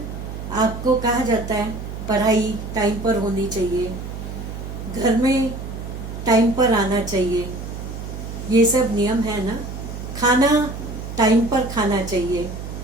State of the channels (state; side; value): noise; right; hum, 8 dB below the sound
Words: आपको कहा जाता है पढ़ाई टाइम पर होनी चाहिए, घर में टाइम पर आना चाहिए, ये सब नियम है ना। खाना टाइम पर खाना चाहिए।